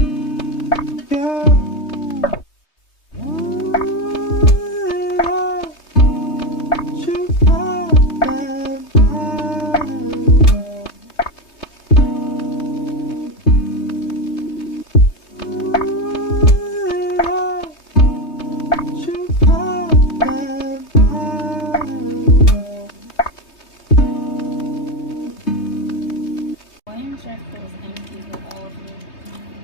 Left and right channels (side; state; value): right; late; 3.2 ms